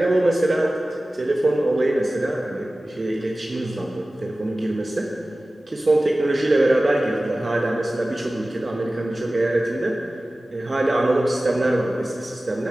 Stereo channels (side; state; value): both; normal; correlation 0.97